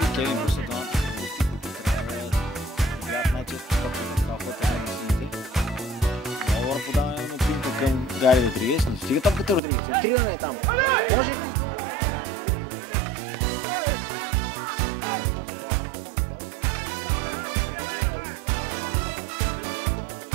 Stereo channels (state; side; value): drops out; left; at 9.6 s